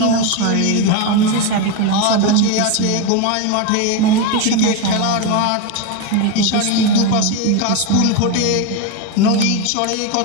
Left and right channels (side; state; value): both; different; correlation 0.03